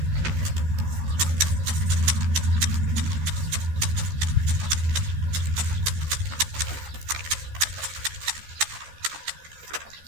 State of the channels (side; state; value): left; late; 13 ms